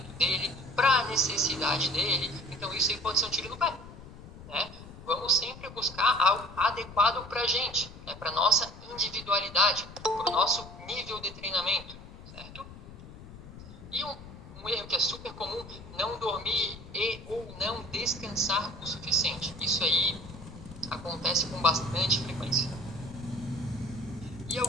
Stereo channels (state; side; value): noise; left; rumble, 15 dB below the sound